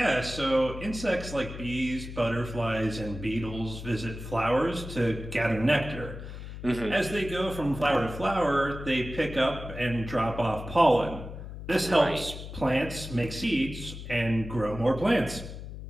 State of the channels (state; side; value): noise; left; hum, 10 dB below the sound